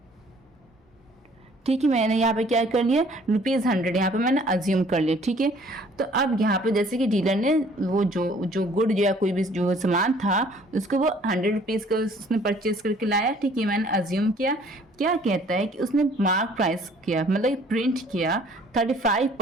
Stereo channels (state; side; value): normal; both; correlation 0.57